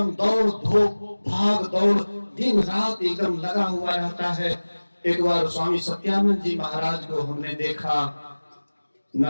दौड़ धूप भाग दौड़ दिन रात एकदम लगा हुआ रहता है। एक बार स्वामी सत्यानंद जी महाराज को हमने देखा,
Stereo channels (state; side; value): inverted; both; correlation -1.00